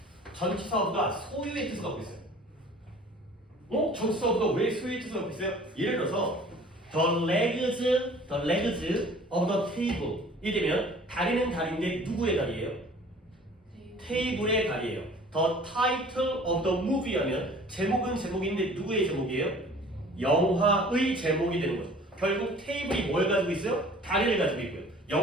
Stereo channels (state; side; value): normal; both; correlation 0.48